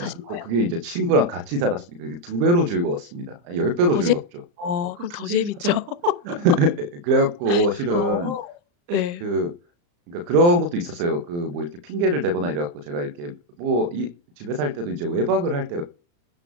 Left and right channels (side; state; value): left; late; 35 ms